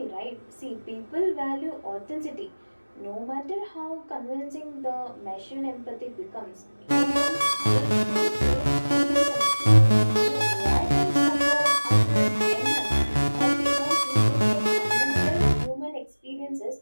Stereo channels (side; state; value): both; inverted; correlation -1.00